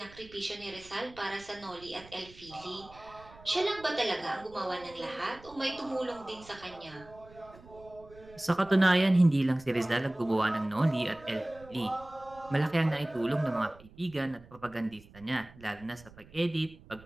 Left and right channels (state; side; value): noise; right; rumble, 22 dB below the sound